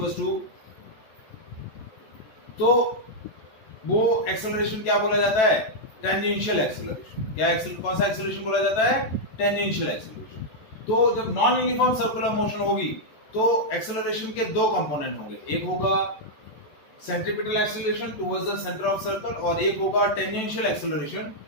टू, तो वो एक्सेलरेशन क्या बोला जाता है? Tangential acceleration. क्या कौन सा एक्सेलरेशन बोला जाता है? Tangential acceleration. तो जब नॉन यूनिफॉर्म सर्कुलर मोशन होगी, तो एक्सेलरेशन के दो कंपोनेंट होंगे. एक होगा centripetal acceleration towards the centre of circle, और एक होगा tangential acceleration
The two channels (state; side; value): late; right; 14 ms